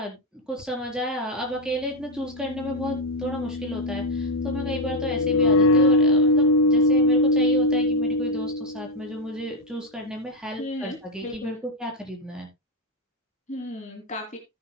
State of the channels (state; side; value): normal; both; correlation 0.03